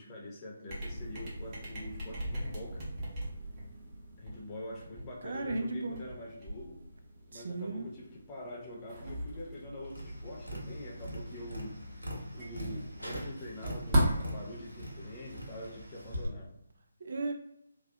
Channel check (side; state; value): both; inverted; correlation -0.83